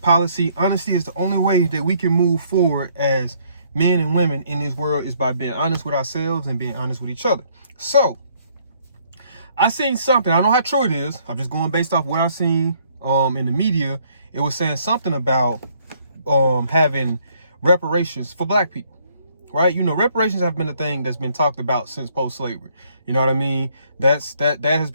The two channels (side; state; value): both; inverted; correlation -0.66